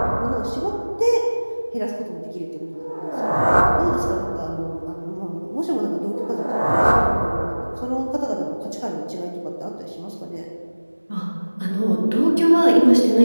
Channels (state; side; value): inverted; both; correlation -1.00